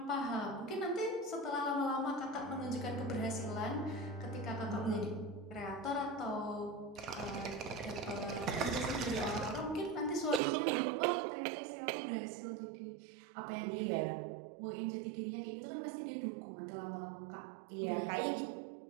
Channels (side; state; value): left; drops out; at 10.4 s